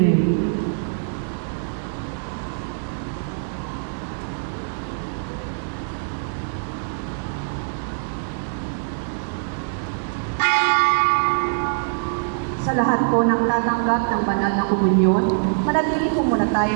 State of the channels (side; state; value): left; silent; digital silence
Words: Sa lahat po ng tatanggap ng banal na komunyon, manatili po muna